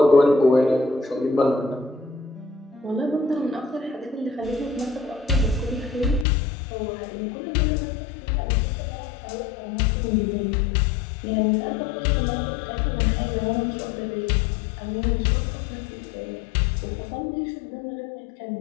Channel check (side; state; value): right; drops out; at 6.2 s